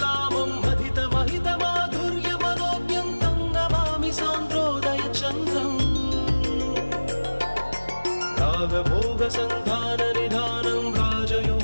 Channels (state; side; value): inverted; both; correlation -1.00